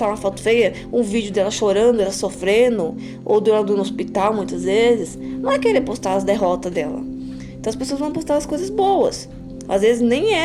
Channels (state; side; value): identical; both; correlation 1.00